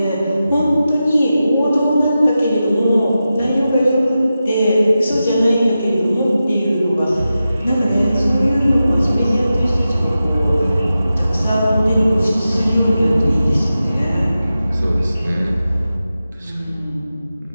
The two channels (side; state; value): both; inverted; correlation -0.92